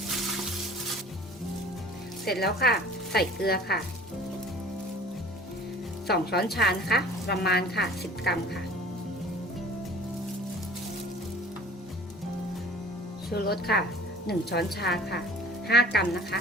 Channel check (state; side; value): normal; both; correlation 0.47